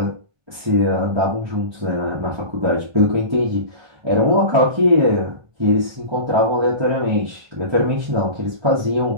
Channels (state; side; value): late; left; 1.3 ms